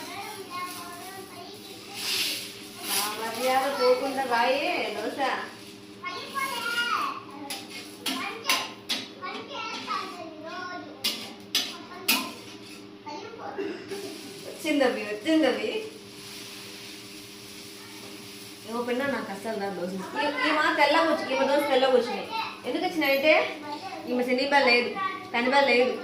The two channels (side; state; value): both; identical; correlation 1.00